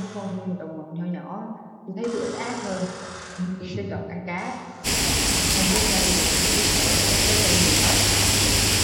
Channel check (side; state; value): both; identical; correlation 1.00